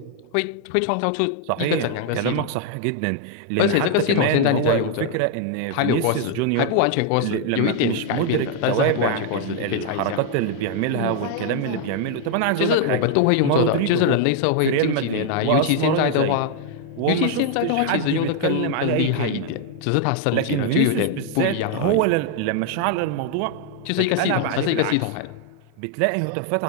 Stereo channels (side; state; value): both; different; correlation 0.00